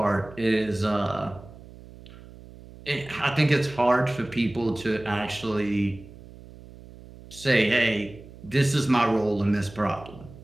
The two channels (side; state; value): right; noise; hum, 19 dB below the sound